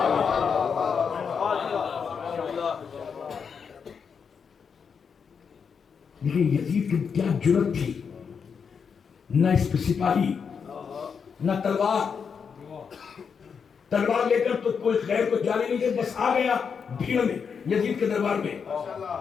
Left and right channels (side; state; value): right; quieter; 6.3 dB